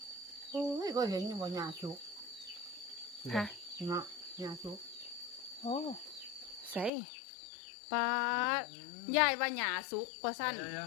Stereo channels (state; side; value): drops out; right; at 6.9 s